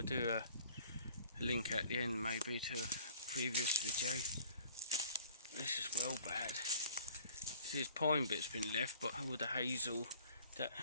do a link at the end maybe to a previous video. This is well bad. See, this pine bit's been left, but all the hazel that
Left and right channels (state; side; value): inverted; both; correlation -0.53